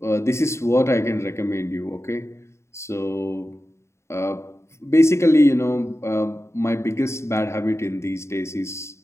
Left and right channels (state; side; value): late; right; 0.13 ms